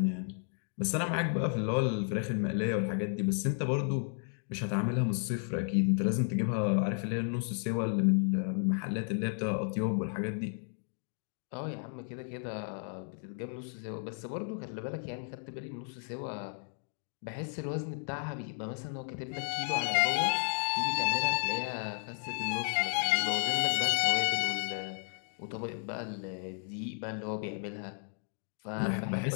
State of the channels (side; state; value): right; silent; 56 dB below the other